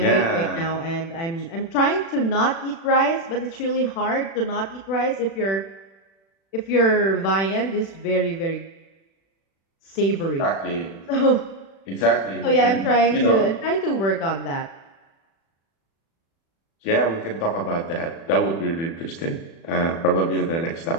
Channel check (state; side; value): late; right; 36 ms